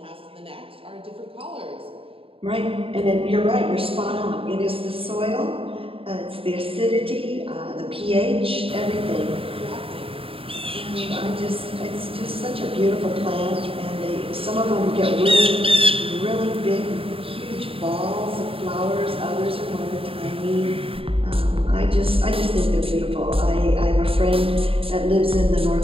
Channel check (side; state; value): left; late; 0.27 ms